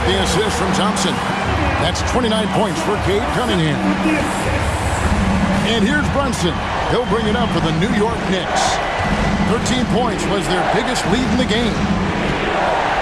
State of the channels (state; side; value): identical; both; correlation 1.00